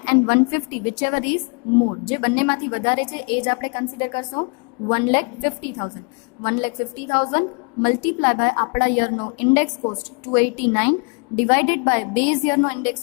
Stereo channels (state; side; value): quieter; right; 35.2 dB